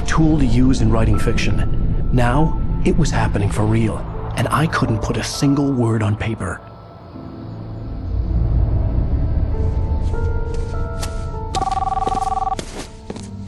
tool to use in writing fiction. Now, it was happening for real, and I couldn't put a single word on paper.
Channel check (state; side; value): identical; both; correlation 1.00